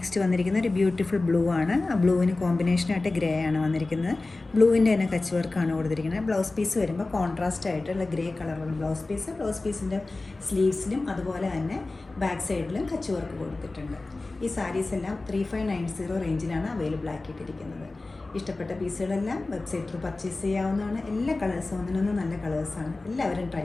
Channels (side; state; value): right; quieter; 3.2 dB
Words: വന്നിരിക്കുന്ന ഒരു ബ്യൂട്ടിഫുൾ ബ്ലൂ ആണ്. ആ ബ്ലൂവിന് കോമ്പിനേഷനായിട്ട് ഗ്രേ ആണ് വന്നിരിക്കുന്നത്. ബ്ലൂവിൻ്റെ തന്നെ കച്ച് വർക്കാണ് കൊടുത്തിരിക്കുന്നത്. ബ്ലൗസ് പീസ് വരുമ്പോൾ കോൺട്രാസ്റ്റ് ആയിട്ടുള്ള ഗ്രേ കളറുള്ള ബ്ലൗസ് പീസിൻ്റെ സ്ലീവ്സിലും അതുപോലെ തന്നെ ബാക്ക് സൈഡിലും കച്ച് വർക്ക് കൊടുത്തിട്ടുണ്ട്. ഈ സാരീസ് എല്ലാം 3590 റേഞ്ചിലാണ് അവൈലബിൾ ആക്കിയിട്ടിരിക്കുന്നത്. ഇഷ്ടപ്പെട്ട പീസുകളെല്ലാം വെബ്സൈറ്റിൽ പർച്ചേസ് ചെയ്യാവുന്നതാണ്. എല്ലാ കളേഴ്സും ഒന്നിനൊന്നും നല്ല കളേഴ്സാണ്. എല്ലാവരും ട്രൈ